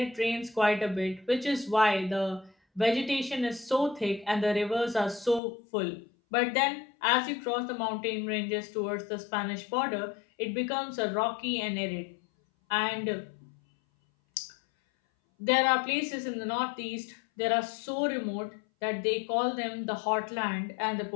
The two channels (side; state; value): right; drops out; at 5.4 s